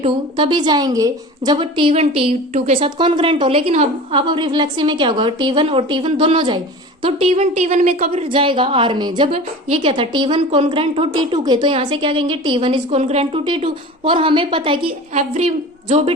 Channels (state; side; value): normal; both; correlation 0.36